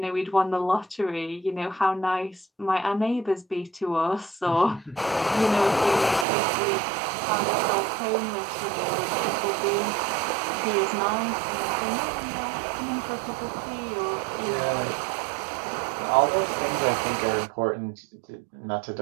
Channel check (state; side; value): drops out; left; at 6.2 s